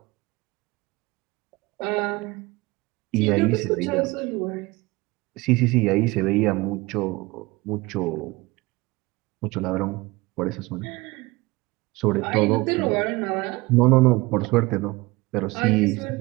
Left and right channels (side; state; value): left; quieter; 22.5 dB